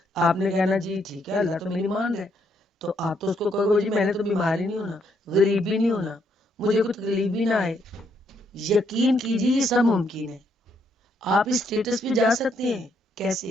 آپ نے کہنا جی ٹھیک ہے اللہ تو میری مان رہا ہے، تو آپ تو اس کو کہو گے جی میں نے تو بیمار ہی نہیں ہونا، غریب بھی نہیں ہونا، مجھے کوئی تکلیف بھی نہ آئے۔ یقین کیجیے یہ سب ممکن ہے، آپ اس اسٹیٹس پہ جا سکتے ہیں۔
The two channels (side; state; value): both; normal; correlation 0.73